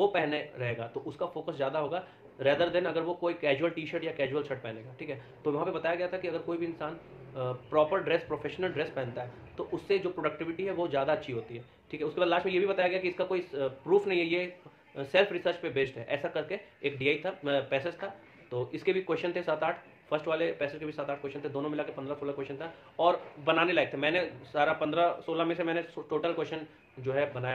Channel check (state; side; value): identical; both; correlation 1.00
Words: पहने रहेगा तो उसका फोकस ज़्यादा होगा रेदर देन अगर वो कोई कैजुअल टी शर्ट या कैजुअल शर्ट पहनेगा, ठीक है। तो वहाँ पे बताया गया था कि अगर कोई भी इंसान प्रॉपर ड्रेस, प्रोफेशनल ड्रेस पहनता है तो उससे जो प्रोडक्टिविटी है वो ज़्यादा अच्छी होती है, ठीक है। उसके बाद लास्ट में ये भी बताया गया कि इसका कोई प्रूफ नहीं है, ये सेल्फ रिसर्च पे बेस्ड है, ऐसा करके एक डीआई था, पैसेज था। तो इसके भी क्वेश्चन थे 7-8, फर्स्ट वाले पैसेज के भी 7-8 क्वेश्चन थे, दोनों मिला के 15-16 क्वेश्चन था, और बनाने लायक थे। मैंने सारा 15-16 में से मैंने टोटल क्वेश्चन जो है बनाया